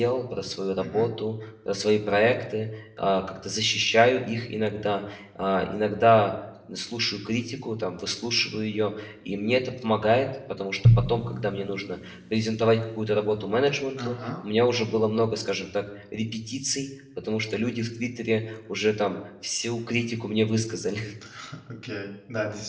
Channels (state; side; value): identical; both; correlation 1.00